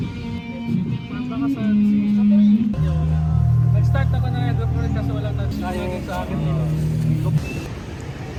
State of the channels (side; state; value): both; identical; correlation 1.00